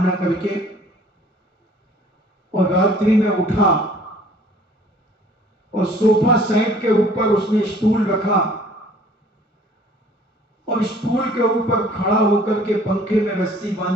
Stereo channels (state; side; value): normal; both; correlation 0.54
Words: करके, और रात्रि में उठा और सोफा सेट के ऊपर उसने स्टूल रखा और स्टूल के ऊपर खड़ा होकर के पंखे में रस्सी